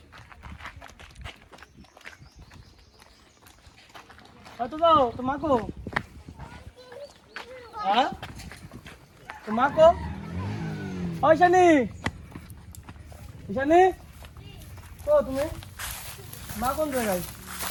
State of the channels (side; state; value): both; identical; correlation 1.00